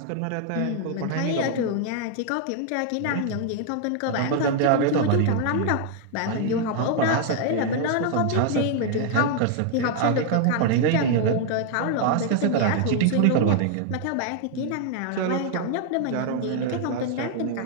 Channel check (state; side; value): different; both; correlation 0.00